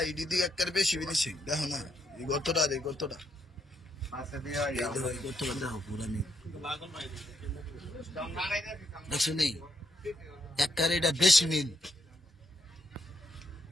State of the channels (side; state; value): both; normal; correlation 0.77